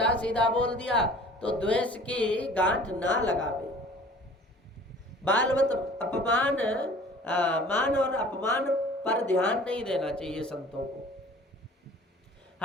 सीधा बोल दिया तो द्वेष की गांठ ना लगावे। बालवत अपमान मान और अपमान पर ध्यान नहीं देना चाहिए संतों को।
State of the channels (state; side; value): normal; both; correlation 0.48